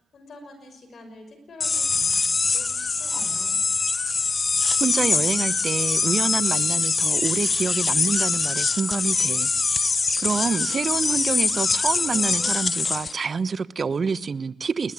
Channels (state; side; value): normal; both; correlation 0.91